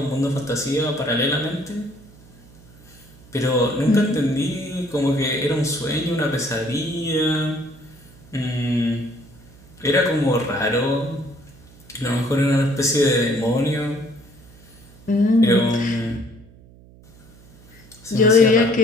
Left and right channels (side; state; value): right; noise; hum, 24 dB below the sound